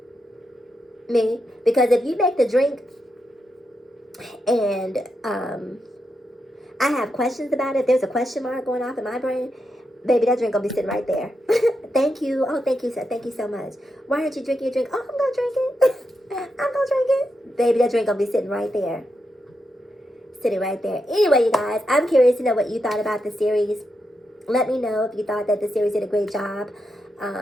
Because if you make the drink and I have questions about it, there's a question mark going off in my brain, baby, that drink gonna be sitting right there. Thank you. Oh, thank you, sir. Thank you so much. Why aren't you drinking your drink? Oh, I'm gonna drink it. I'm gonna drink it. Baby, that drink gonna be sitting right there. Sitting right there. Anyway, you guys, I'm curious to know what you thought about the series. Let me know if you thought that the series did a great job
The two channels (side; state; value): both; normal; correlation 0.85